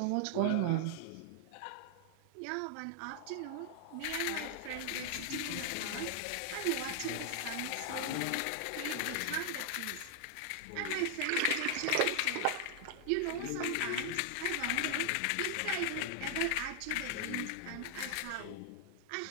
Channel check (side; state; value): both; different; correlation 0.00